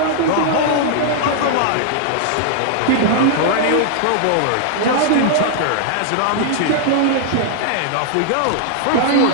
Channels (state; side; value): different; both; correlation -0.01